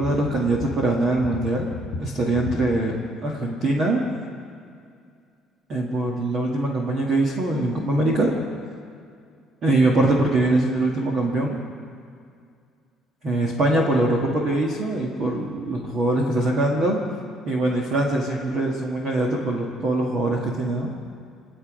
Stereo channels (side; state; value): both; normal; correlation 0.69